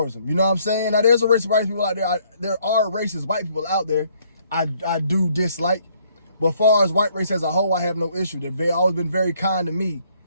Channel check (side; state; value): both; inverted; correlation -0.66